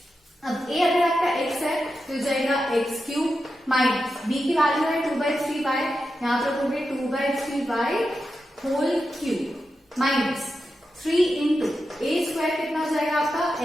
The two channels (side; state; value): both; normal; correlation 0.89